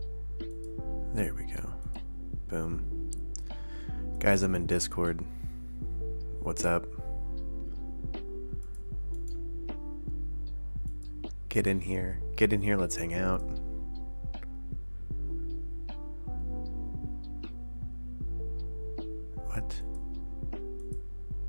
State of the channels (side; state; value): both; inverted; correlation -1.00